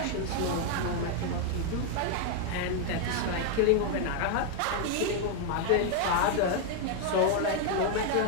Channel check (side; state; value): both; different; correlation 0.00